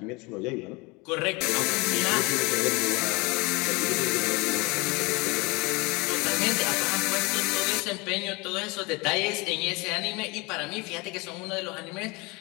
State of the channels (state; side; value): quieter; right; 26.0 dB